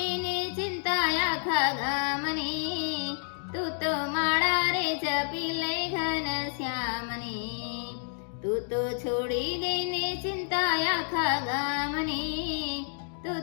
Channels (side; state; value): right; silent; digital silence